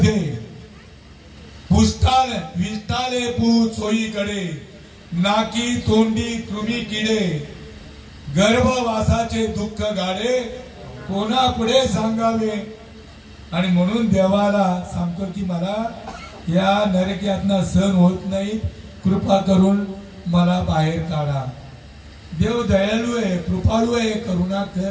विष्टाले पूत सोयीकडे, नाकी तोंडी कृमी किडे, गर्भवासाचे दुःख गाडे, कोणापुढे सांगावे. आणि म्हणून देवाला सांगतो की मला या नरकातनं सहन होत नाही, कृपा करून मला बाहेर काढा. देव दयाळू आहे, कृपाळू आहे,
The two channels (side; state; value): both; identical; correlation 1.00